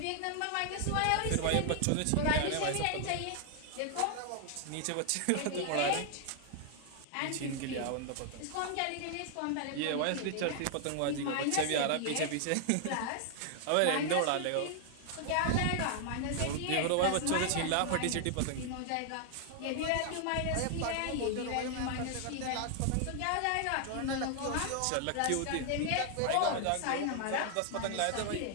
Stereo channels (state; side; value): different; both; correlation 0.00